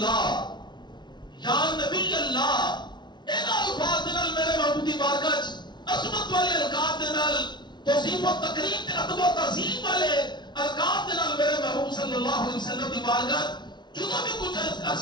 یا نبی اللہ اینا الفاظ نال میرے محبوب دی بارگاہ عظمت والے القاب دے نال توصیف و تکریم تے ادب و تعظیم والے القاب دے نال میرے محبوب صلی اللہ علیہ وسلم دی بارگاہ جدوں بھی کچھ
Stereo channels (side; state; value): right; late; 0.21 ms